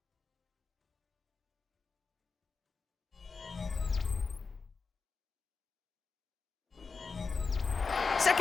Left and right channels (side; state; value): right; quieter; 4.7 dB